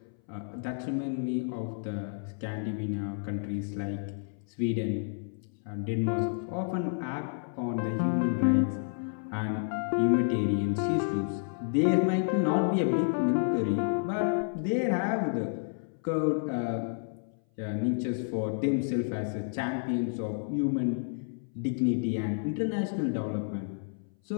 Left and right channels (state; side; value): silent; right; 58 dB below the other